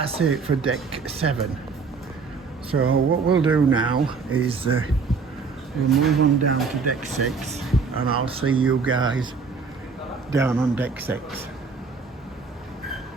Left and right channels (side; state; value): left; quieter; 4.9 dB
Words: it for deck 7. So what we'll do now is we'll move on down to deck 6, and I'll see you guys down on deck 6.